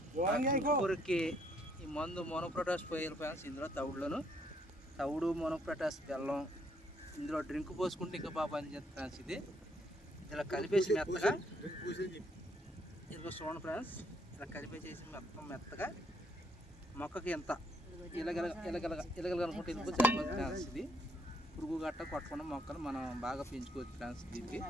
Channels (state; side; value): normal; both; correlation 0.70